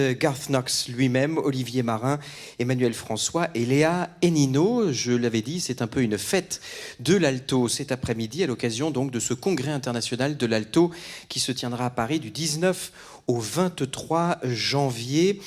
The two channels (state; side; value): identical; both; correlation 1.00